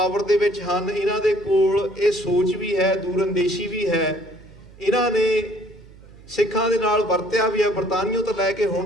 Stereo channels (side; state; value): right; noise; hum, 22 dB below the sound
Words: ਦੇ ਵਿੱਚ ਹਨ, ਇਹਨਾਂ ਦੇ ਕੋਲ ਇਹ ਸੋਚ ਵੀ ਹੈ, ਦੂਰਅੰਦੇਸ਼ੀ ਵੀ ਹੈ, ਇਹਨਾਂ ਨੇ ਸਿੱਖਾਂ ਦੇ ਨਾਲ ਵਰਤਿਆ ਵੀ ਹੈ ਬਰਤਾਨੀਆ ਤੋਂ ਲੈ ਕੇ